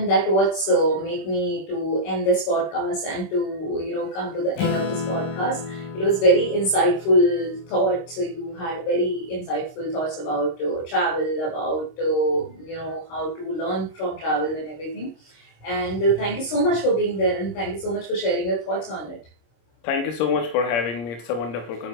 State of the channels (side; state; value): right; late; 26 ms